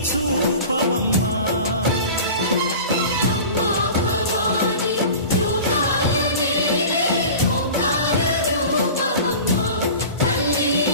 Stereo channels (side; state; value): both; inverted; correlation -0.37